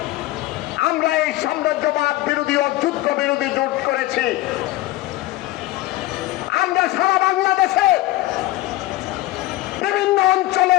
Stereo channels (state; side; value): quieter; right; 16.9 dB